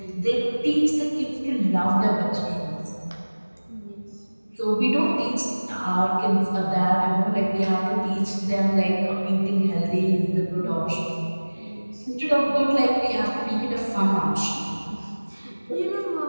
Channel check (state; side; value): inverted; both; correlation -1.00